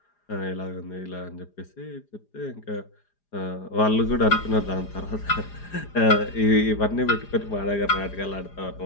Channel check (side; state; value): right; late; 4.9 ms